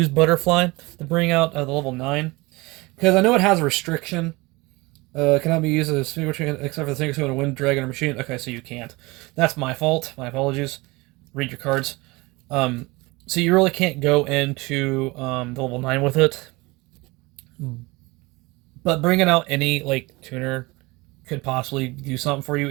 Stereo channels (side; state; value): left; quieter; 23.4 dB